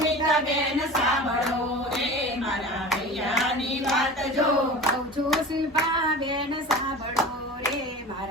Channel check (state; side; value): normal; both; correlation 0.35